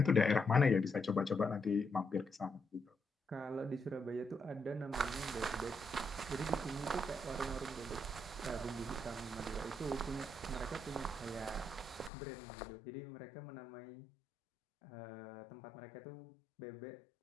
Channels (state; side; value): drops out; right; at 12.1 s